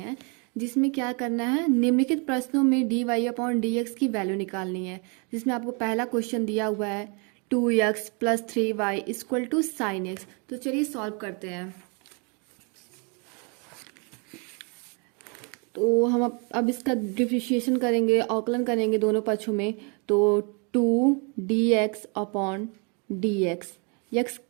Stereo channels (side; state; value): left; quieter; 34.5 dB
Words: जिसमें क्या करना है, निम्नलिखित प्रश्नों में d y upon d x की वैल्यू निकालनी है। जिसमें आपको पहला क्वेश्चन दिया हुआ है 2x plus 3y equal to sine x. तो चलिए सॉल्व करते हैं। तो हम अब इसका डिफरेंशिएशन करेंगे, अवकलन करेंगे दोनों पक्षों में। तो 2 dx upon d x, x